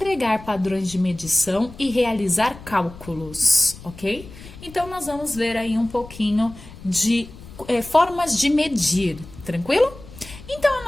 Padrões de Medição e Realizar Cálculos, ok? Então, nós vamos ver aí um pouquinho de formas de medir, tranquilo? Então,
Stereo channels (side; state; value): left; noise; rumble, 17 dB below the sound